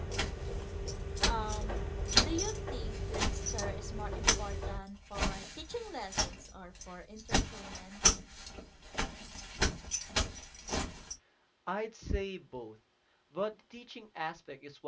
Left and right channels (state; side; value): identical; both; correlation 1.00